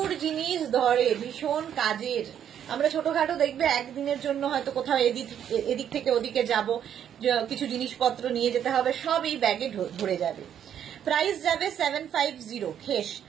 জিনিস ধরে, ভীষণ কাজের। আমরা ছোটখাটো দেখবে একদিনের জন্য হয়তো কোথাও এদিক থেকে ওদিকে যাব, কিছু জিনিসপত্র নিয়ে যেতে হবে, সব এই ব্যাগে ধরে যাবে। প্রাইস যাবে 750, খেস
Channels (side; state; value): left; quieter; 9.5 dB